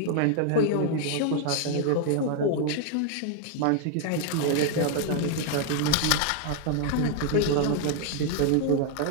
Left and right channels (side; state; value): both; different; correlation 0.00